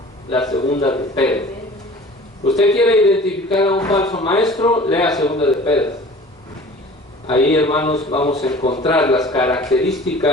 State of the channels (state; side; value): normal; both; correlation 0.44